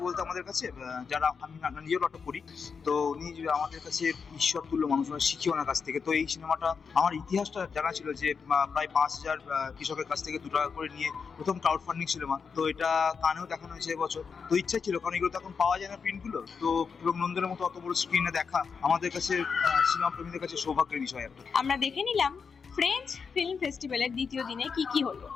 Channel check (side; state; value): right; quieter; 5.7 dB